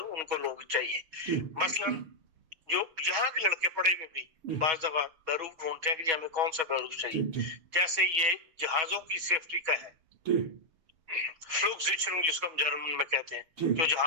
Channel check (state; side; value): late; left; 6.2 ms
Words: ان کو لوگ چاہیے. مثلاً جو یہاں کے لڑکے پڑھے ہوئے بھی بعض دفعہ بیروف ڈھونڈتے ہیں کہ جی ہمیں کون سا بیروف چاہیے. جیسے یہ جہازوں کی سیفٹی کا ہے, فلوک سیچرنگ جس کو ہم جرمن میں کہتے ہیں, جو